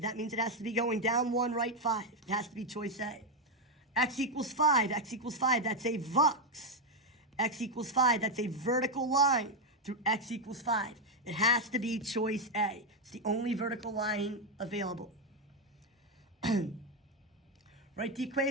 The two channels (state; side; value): normal; both; correlation 0.05